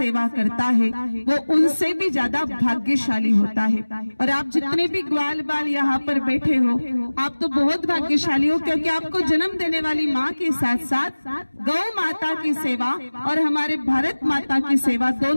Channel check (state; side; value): inverted; both; correlation -1.00